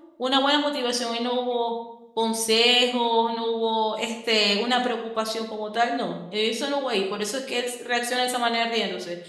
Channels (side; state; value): both; identical; correlation 1.00